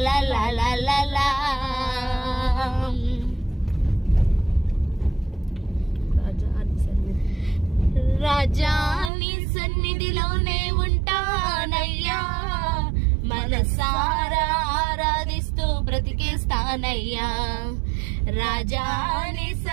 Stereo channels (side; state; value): left; drops out; at 9.1 s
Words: లా లా లా లా లా. రాజా నీ సన్నిధిలోనే ఉంటానయ్యా, మనసారా ఆరాధిస్తూ బ్రతికేస్తానయ్యా. రాజా నీ